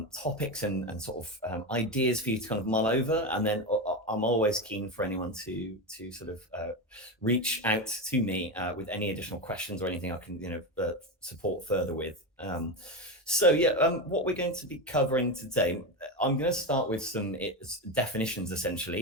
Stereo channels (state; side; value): normal; both; correlation 0.16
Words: topics and sort of ideas for you to kind of mull over. And then I'm always keen for anyone to sort of reach out to me with any additional questions or anything I can, support further with. What we're going to be covering today, I'm going to start with some definitions